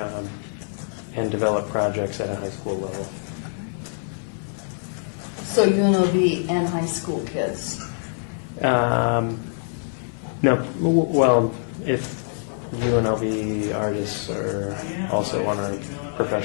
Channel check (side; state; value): right; silent; 56 dB below the other